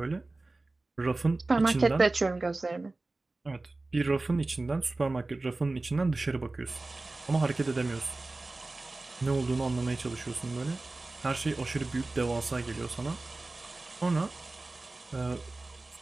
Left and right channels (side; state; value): left; quieter; 3.2 dB